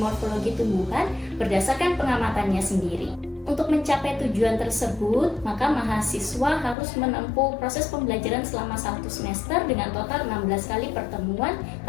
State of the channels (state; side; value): drops out; right; at 6.8 s